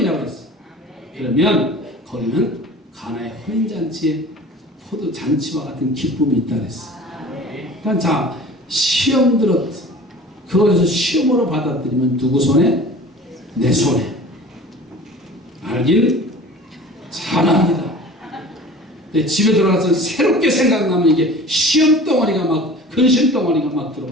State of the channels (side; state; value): both; normal; correlation 0.42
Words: 했어요. 그러면 거기는 가나의 혼인잔치에 포도잔치와 같은 기쁨이 있다 그랬어요. 그러니까 자 시험 들었 그것을 시험으로 받아들이면 누구 손에? 내 손에. 알길 잘합니다. 집에 들어가서 새롭게 생각나면 이게 시험 덩어리가 막 근심 덩어리가 막